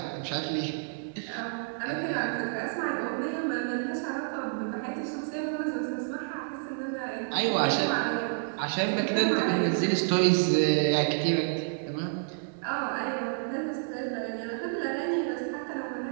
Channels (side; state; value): left; silent; 58 dB below the other